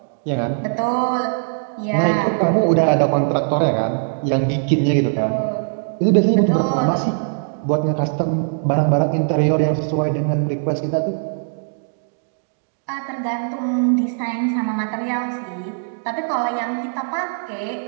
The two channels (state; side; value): silent; left; digital silence